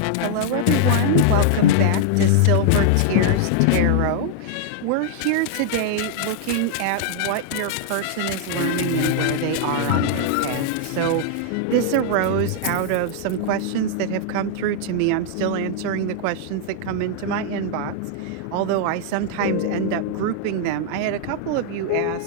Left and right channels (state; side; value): different; both; correlation -0.01